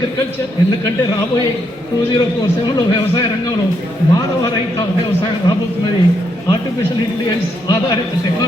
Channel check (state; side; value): normal; both; correlation 0.77